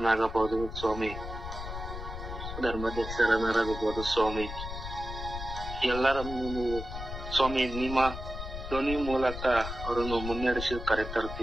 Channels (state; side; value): noise; left; rumble, 8 dB below the sound